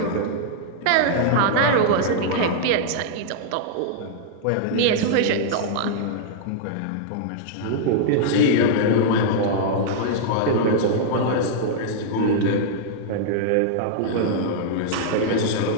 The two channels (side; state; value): both; different; correlation -0.01